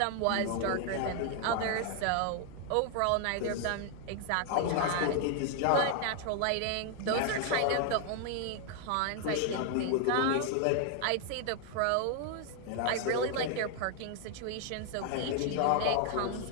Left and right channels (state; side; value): different; both; correlation 0.00